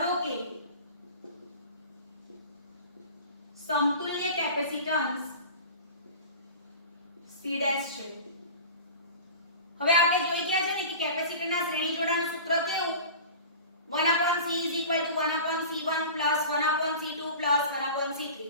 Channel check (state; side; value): inverted; both; correlation -0.37